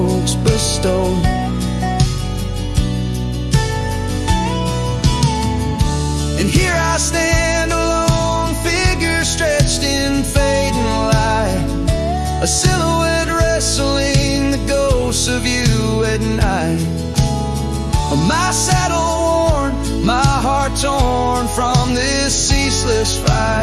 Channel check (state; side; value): identical; both; correlation 1.00